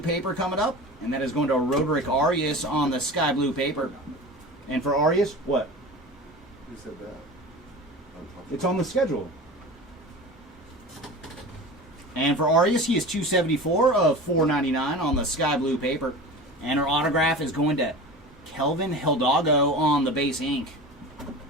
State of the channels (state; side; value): normal; both; correlation 0.34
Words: paper coming up. And that is going to Roderick Arias on the sky blue paper. And for Arias, what? Who said that? It's on the schedule. And for Arias, he is 274 of 499 on the sky blue paper. And our autograph is going to Kelvin Hidalgo on the base ink.